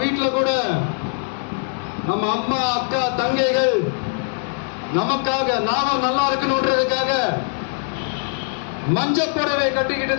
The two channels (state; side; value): silent; right; 65 dB below the other